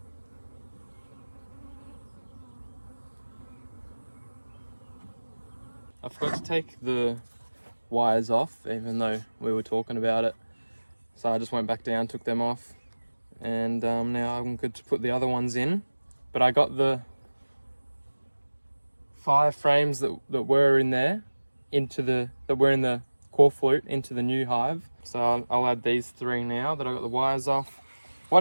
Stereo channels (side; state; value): both; inverted; correlation -1.00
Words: I forgot to take the wires off, even though we were talking about it. So I just went back down, took them off, and now I'm good to put the other ones in. But I got the 5 frames that were in there that were in the core flute into the new hive. So I'll add these 3 now that I got the wires off.